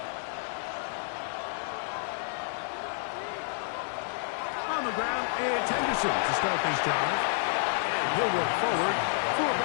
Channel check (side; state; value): right; silent; digital silence